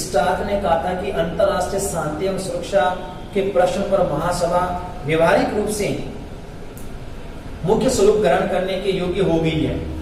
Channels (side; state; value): both; identical; correlation 1.00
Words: ने कहा था कि अंतर्राष्ट्रीय शांति एवं सुरक्षा के प्रश्न पर महासभा व्यवहारिक रूप से मुख्य स्वरूप ग्रहण करने के योग्य हो गई है।